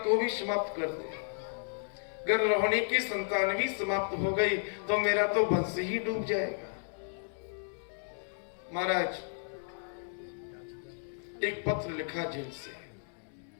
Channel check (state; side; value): silent; right; digital silence